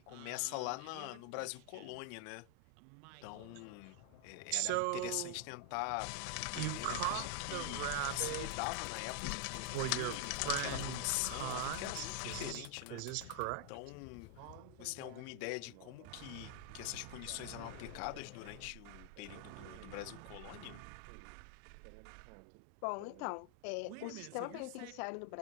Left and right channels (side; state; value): both; different; correlation 0.00